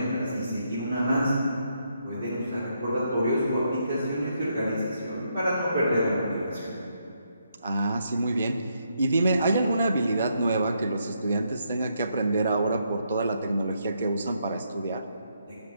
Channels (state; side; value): inverted; both; correlation -0.77